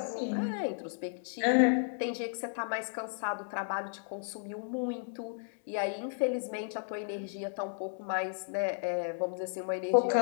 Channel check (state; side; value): silent; right; digital silence